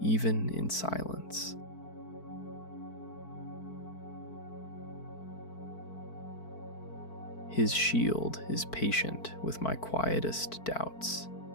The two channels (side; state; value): right; late; 4.5 ms